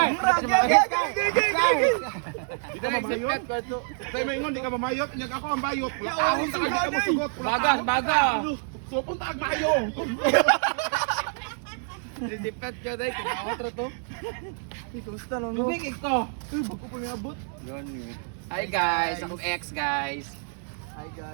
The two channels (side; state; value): left; silent; 60 dB below the other